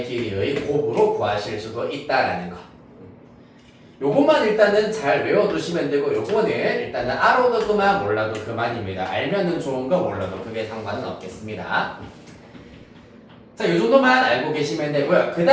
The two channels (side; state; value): both; identical; correlation 1.00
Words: 길이의 곱으로 구하실 수도 있다라는 거. 요것만 일단은 잘 외워두시면 되고 요거는 일단은 알아도 그만 몰라도 그만입니다. 알면은 좋은 거 몰라도 그게 상관은 없겠습니다. 자, 요 정도만 알고 계시면 되고요. 그